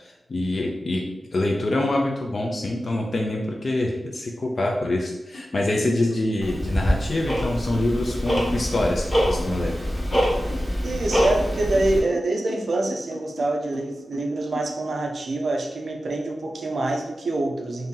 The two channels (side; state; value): both; normal; correlation 0.93